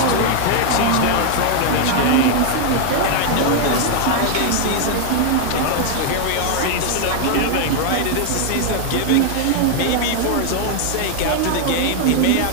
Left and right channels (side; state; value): both; different; correlation 0.00